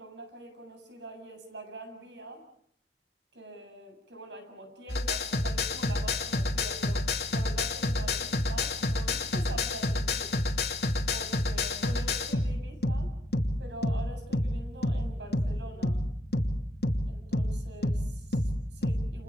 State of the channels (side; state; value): both; normal; correlation 0.67